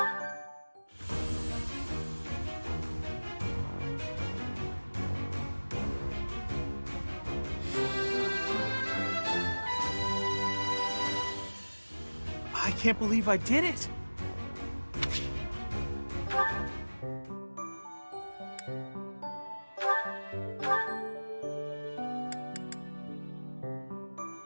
I can't believe I did it!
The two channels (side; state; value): both; inverted; correlation -1.00